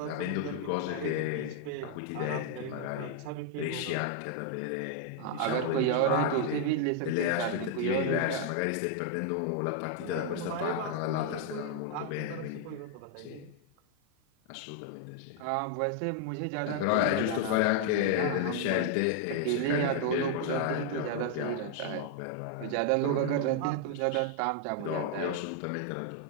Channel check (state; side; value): different; both; correlation 0.00